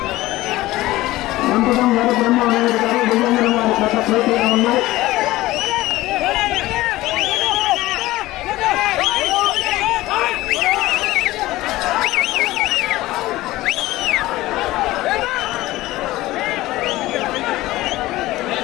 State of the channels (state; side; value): quieter; right; 17.6 dB